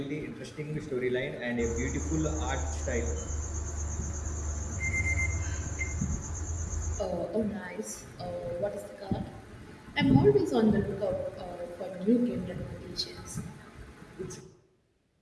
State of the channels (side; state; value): both; identical; correlation 1.00